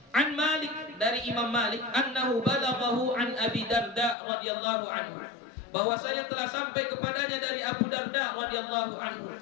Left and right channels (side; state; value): right; drops out; at 4.2 s